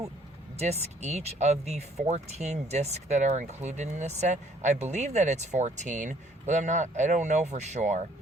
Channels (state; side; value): normal; both; correlation 0.61